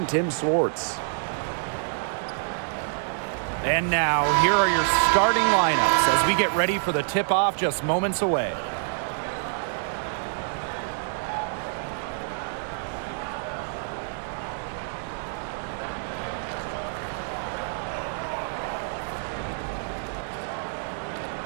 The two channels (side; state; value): left; silent; digital silence